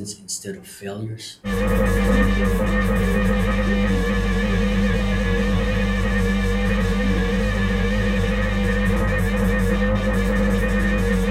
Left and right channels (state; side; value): identical; both; correlation 1.00